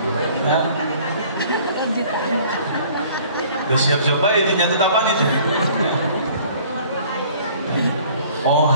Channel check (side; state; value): both; inverted; correlation -0.53